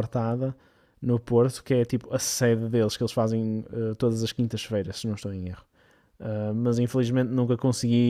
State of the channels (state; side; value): identical; both; correlation 1.00